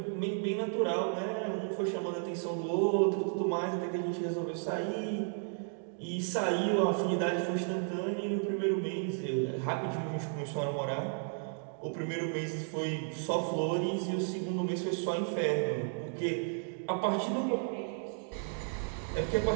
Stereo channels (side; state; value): left; silent; 55 dB below the other